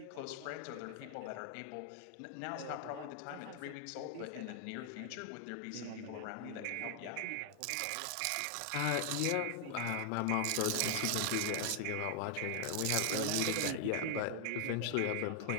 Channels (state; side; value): different; both; correlation 0.00